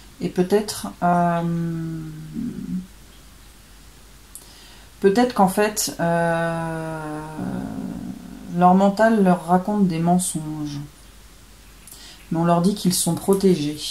Et peut-être qu'en fait leur mental leur raconte des mensonges. Mais on leur dit qu'ils sont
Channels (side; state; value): both; identical; correlation 1.00